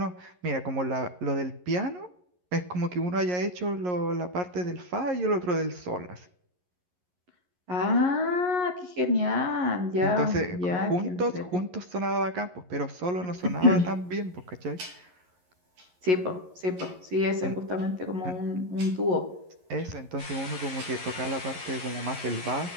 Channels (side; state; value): left; late; 11 ms